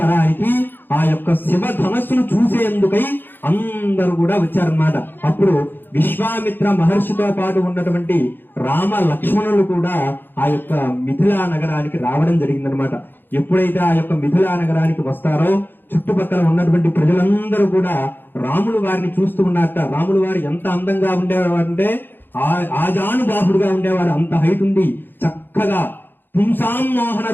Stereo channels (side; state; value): right; late; 0.096 ms